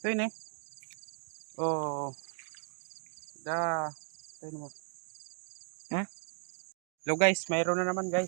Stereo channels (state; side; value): silent; left; 54 dB below the other